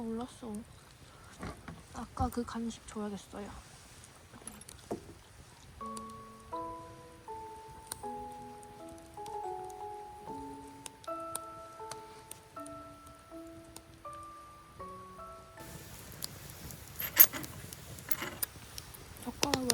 몰랐어. 아까 그 간식 줘야겠어요.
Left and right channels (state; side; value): identical; both; correlation 1.00